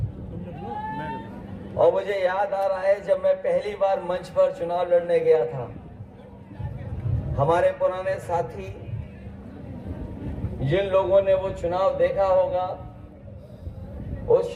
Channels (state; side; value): identical; both; correlation 1.00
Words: और मुझे याद आ रहा है जब मैं पहली बार मंच पर चुनाव लड़ने गया था, हमारे पुराने साथी जिन लोगों ने वो चुनाव देखा होगा, उस